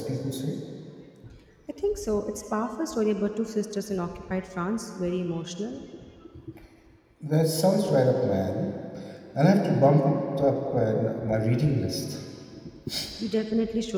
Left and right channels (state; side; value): identical; both; correlation 1.00